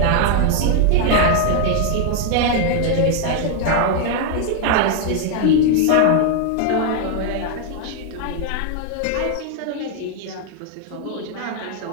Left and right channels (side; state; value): both; different; correlation 0.00